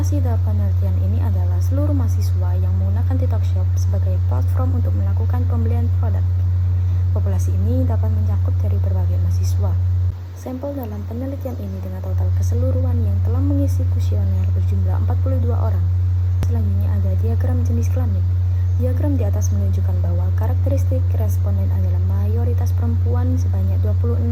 dalam penelitian ini adalah seluruh mahasiswa yang menggunakan TikTok Shop sebagai platform untuk melakukan pembelian produk. Populasi ini dapat mencakup dari berbagai mahasiswa. Sampel dalam penelitian ini dengan total keseluruhan yang telah mengisi kuesioner berjumlah 42 orang. Selanjutnya ada diagram jenis kelamin. Diagram di atas menunjukkan bahwa karakteristik responden adalah mayoritas perempuan sebanyak 26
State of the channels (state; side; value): identical; both; correlation 1.00